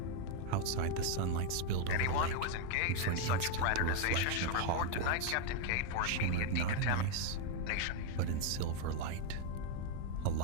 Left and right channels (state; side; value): different; both; correlation 0.01